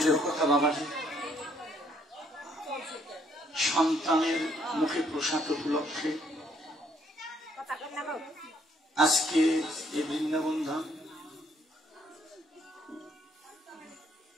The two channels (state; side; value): normal; both; correlation 0.67